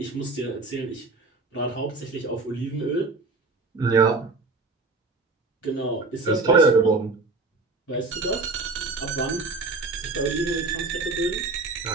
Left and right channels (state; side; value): quieter; left; 3.8 dB